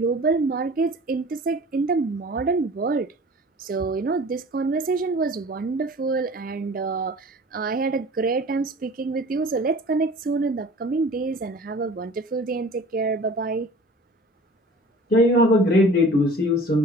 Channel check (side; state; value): both; normal; correlation 0.44